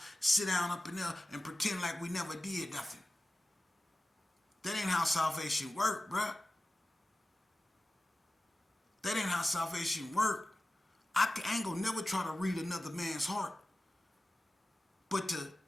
sit down up in there, and pretend like we never did nothing. That ain't how salvation work, bruh. That ain't how salvation work. I ain't gonna never try to read another man's heart. But to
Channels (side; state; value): both; normal; correlation 0.94